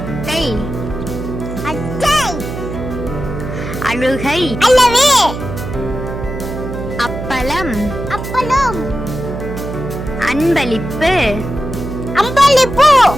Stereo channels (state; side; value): noise; right; hum, 7 dB below the sound